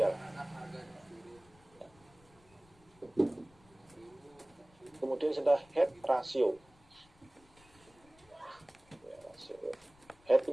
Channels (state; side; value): noise; left; rumble, 28 dB below the sound